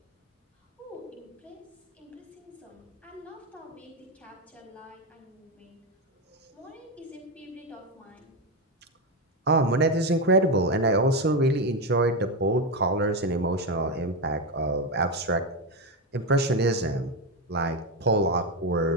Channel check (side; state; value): both; normal; correlation 0.11